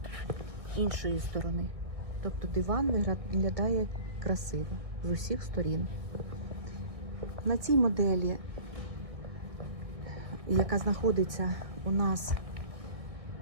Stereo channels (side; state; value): left; late; 1.6 ms